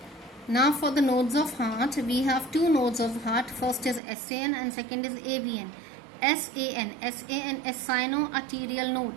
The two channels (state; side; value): drops out; left; at 4.0 s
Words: now for the nodes of heart, we have two nodes of heart. First is SAN and second is AVN. SAN is sino-arterial node.